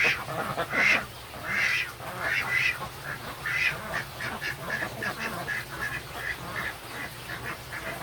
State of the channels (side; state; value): left; noise; rumble, 25 dB below the sound